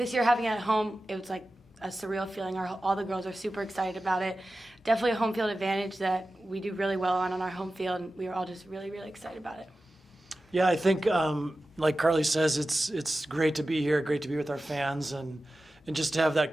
year having it at home, it was like a surreal feeling. All the girls are super excited about it. Definitely a home field advantage that we do really well on our home field, and we were all just really, really excited about it. Yeah, I think like Carly says, it's great to be here, great to be with our fans, and just to have that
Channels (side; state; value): both; normal; correlation 0.94